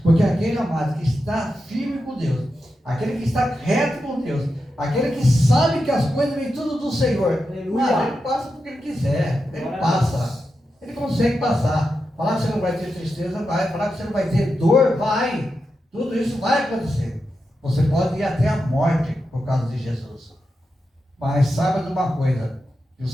Porque aquele amado que está firme com Deus, aquele que está reto com Deus, aquele que sabe que as coisas vêm tudo do Senhor, ele passa porque ele quiser, ele passa, ele consegue passar. Falar que você não vai ter tristeza, vai. Falar que você não vai ter dor, vai. Tudo isso vai acontecer. Você pode ir até a morte por causa de Jesus. Mas saiba de uma coisa, que o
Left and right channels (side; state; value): both; normal; correlation 0.88